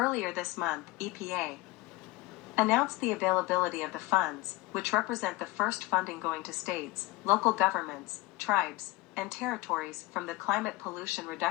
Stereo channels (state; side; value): quieter; right; 20.1 dB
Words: this month, EPA announced the availability of the funds, which represent the first funding going to states, local governments, tribes, and territories from the Climate Pollution